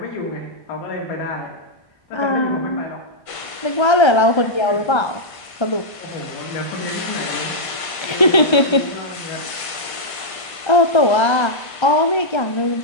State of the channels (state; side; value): late; right; 1.5 ms